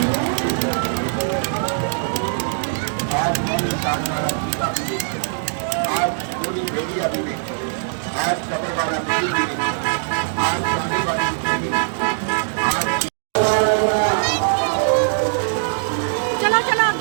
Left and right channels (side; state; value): left; silent; digital silence